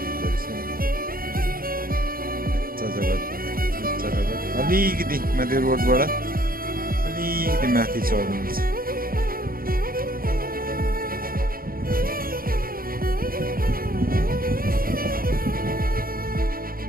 गरिन्छ। अलिकति माथि रोडबाट अलिकति माथि चढ्नुहुन्छ।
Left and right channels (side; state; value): left; late; 0.42 ms